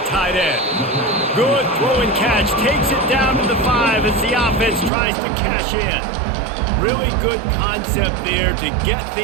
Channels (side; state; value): left; drops out; at 4.9 s